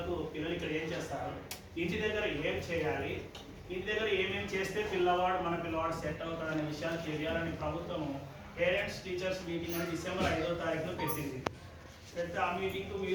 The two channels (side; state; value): both; identical; correlation 1.00